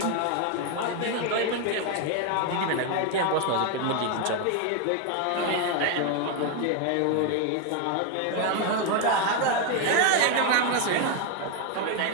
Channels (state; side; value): different; both; correlation 0.01